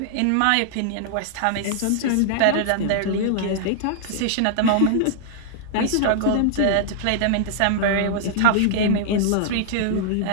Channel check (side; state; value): both; different; correlation -0.01